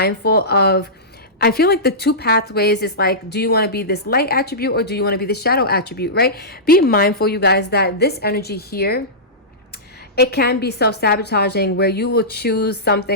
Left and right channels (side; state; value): both; normal; correlation -0.17